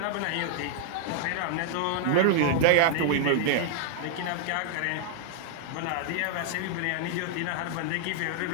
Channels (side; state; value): both; different; correlation -0.01